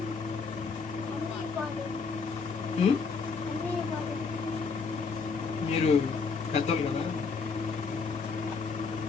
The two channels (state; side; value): quieter; right; 4.9 dB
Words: మీరు పెద్దోళ్ళు కదా.